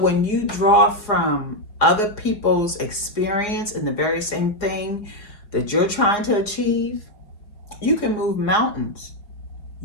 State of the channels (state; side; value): late; right; 4.9 ms